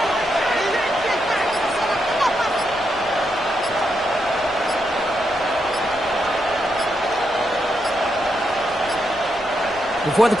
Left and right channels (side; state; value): left; noise; rumble, 22 dB below the sound